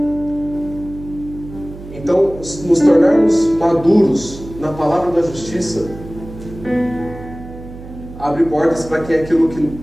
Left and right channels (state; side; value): noise; right; hum, 15 dB below the sound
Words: Então, nos tornarmos maduros na palavra da justiça abre portas para aquilo